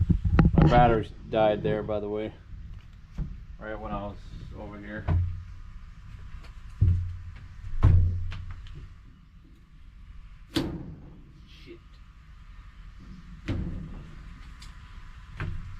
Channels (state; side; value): identical; both; correlation 1.00